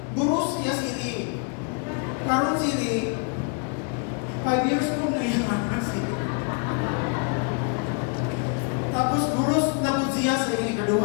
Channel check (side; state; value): right; quieter; 37.7 dB